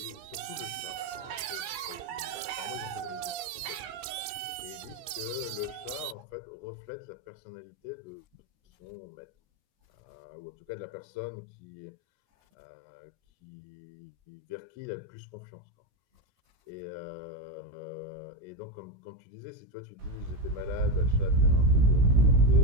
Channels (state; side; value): late; left; 16 ms